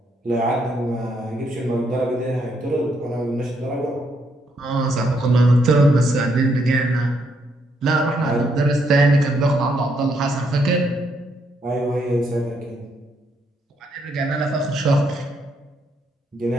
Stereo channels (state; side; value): normal; both; correlation 0.75